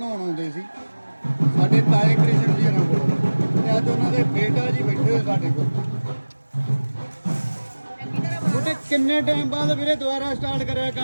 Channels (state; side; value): inverted; both; correlation -1.00